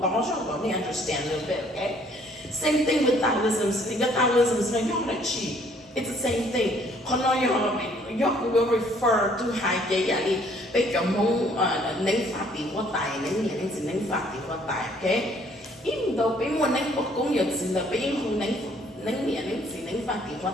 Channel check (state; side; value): normal; both; correlation 0.62